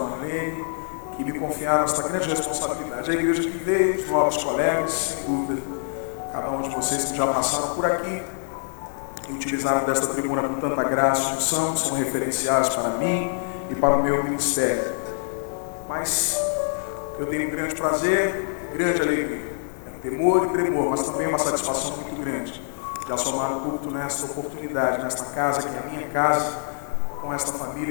Marlene, que me confiaram esta grande responsabilidade. A igreja que veio, os novos colegas, sem dúvida, cada um de vocês que já passaram por aqui e utilizaram desta tribuna com tanta graça e unção, são referenciais para mim e para o meu ministério. Mas eu tenho um grande prazer, grande alegria, temor e tremor, mas também uma satisfação muito grande de assomar o culto nesta oportunidade, nesta casa que é a minha casa, com esta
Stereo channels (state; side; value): silent; right; 58 dB below the other